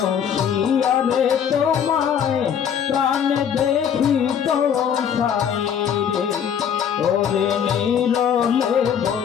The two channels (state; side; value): quieter; right; 8.2 dB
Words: রে তোমায় প্রাণে দেখি তো সাই রে। ওরে নীরলে